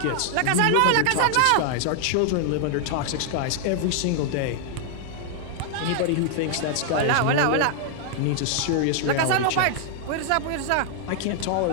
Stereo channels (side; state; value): both; different; correlation 0.00